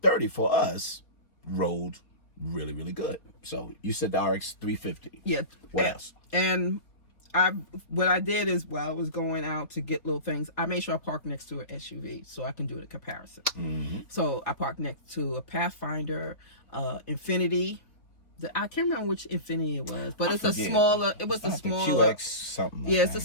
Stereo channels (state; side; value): late; right; 3.8 ms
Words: for us rode really, really good. So you said the RX 350. Yeah. What else? And what I did is while I was going out to get little things, I made sure I parked next to an SUV so I can do the comparison. Mm-hmm. So I parked next to a Pathfinder, Infinity. I can't remember which Infinity it was, but it's a smaller. It was a smaller QX something. Yeah, it's a